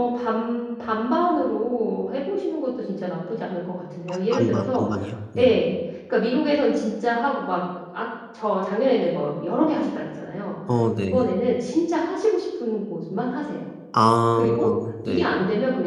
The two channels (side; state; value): both; identical; correlation 1.00